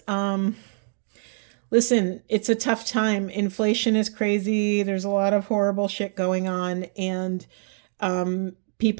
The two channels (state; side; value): silent; left; digital silence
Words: Listen, it's a tough time. Inflation is crazy. There's a lot of horrible shit going on, and